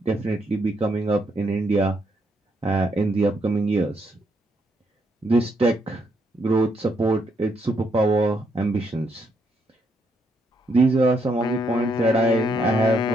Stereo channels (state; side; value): normal; both; correlation 0.75